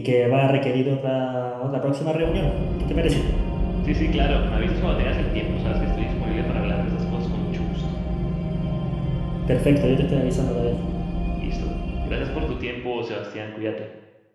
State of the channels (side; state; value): both; identical; correlation 1.00